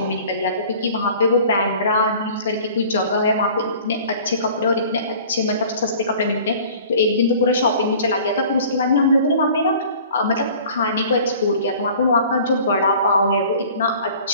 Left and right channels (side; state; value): both; inverted; correlation -0.47